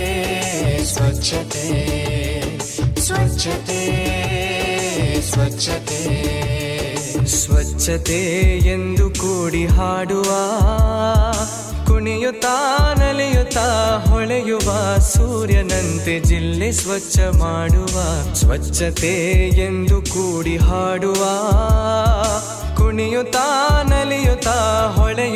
ಸ್ವಚ್ಛತೆ ಸ್ವಚ್ಛತೆ ಸ್ವಚ್ಛತೆ ಸ್ವಚ್ಛತೆ ಎಂದು ಕೂಡಿ ಹಾಡುವ, ಕುಣಿಯುತ್ತಾ ನಲಿಯುತ್ತಾ ಹೊಳೆಯುವ ಸೂರ್ಯನಂತೆ ಜಿಲ್ಲೆ ಸ್ವಚ್ಛ ಮಾಡುವ. ಸ್ವಚ್ಛತೆ ಎಂದು ಕೂಡಿ ಹಾಡುವ, ಕುಣಿಯುತ್ತಾ ನಲಿಯುತ್ತಾ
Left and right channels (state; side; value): identical; both; correlation 1.00